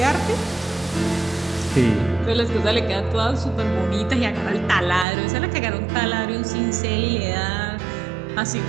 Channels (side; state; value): left; drops out; at 5.1 s